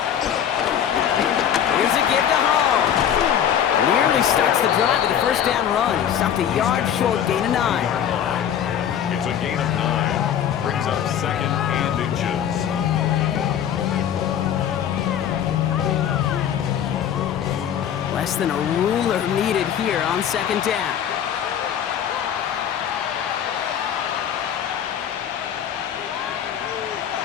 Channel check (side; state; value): right; quieter; 9.3 dB